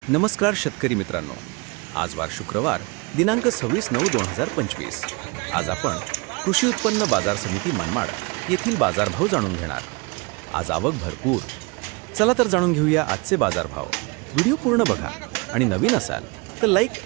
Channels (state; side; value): quieter; left; 28.8 dB